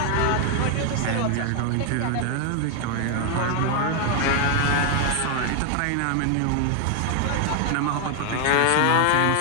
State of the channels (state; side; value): different; both; correlation 0.01